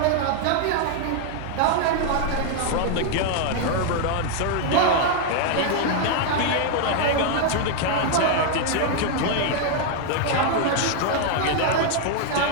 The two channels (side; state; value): both; different; correlation 0.00